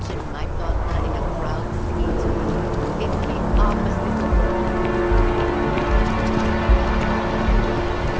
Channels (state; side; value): identical; both; correlation 1.00